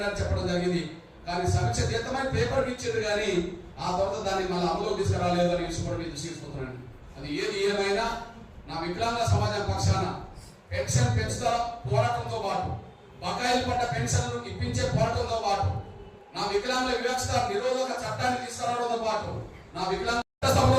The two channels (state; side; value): identical; both; correlation 1.00